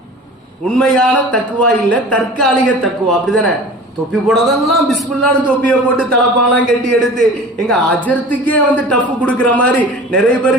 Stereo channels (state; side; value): normal; both; correlation 0.39